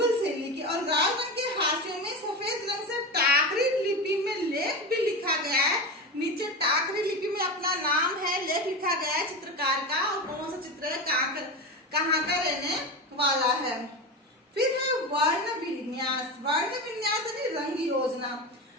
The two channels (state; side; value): normal; both; correlation 0.22